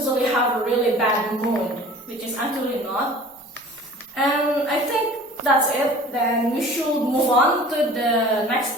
have a really bad mood, which is actually not. And I think that's it. Then we should move on to the next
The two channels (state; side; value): normal; both; correlation 0.44